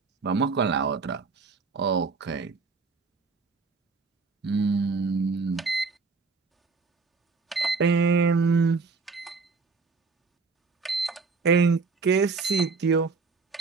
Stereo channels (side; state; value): left; quieter; 4.6 dB